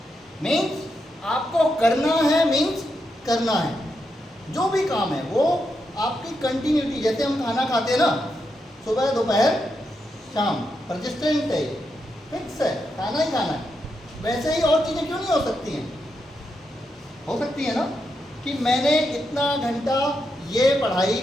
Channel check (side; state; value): both; normal; correlation 0.84